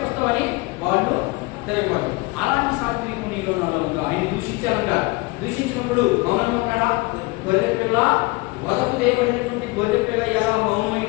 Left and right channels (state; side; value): quieter; right; 24.1 dB